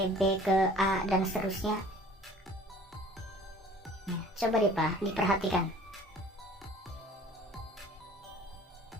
B ke A, dan seterusnya. Nah, coba diperhatikan.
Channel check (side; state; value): both; normal; correlation 0.49